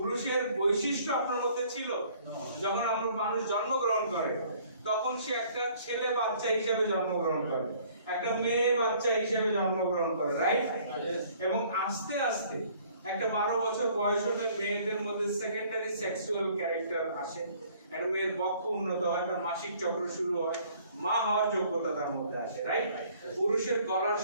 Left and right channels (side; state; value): both; inverted; correlation -0.57